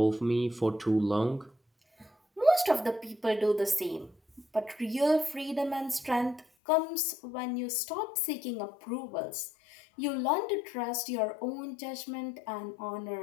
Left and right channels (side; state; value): right; drops out; at 6.5 s